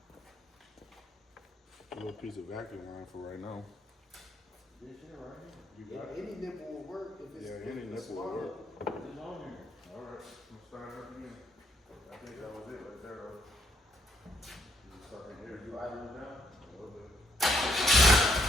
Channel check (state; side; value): normal; both; correlation 0.73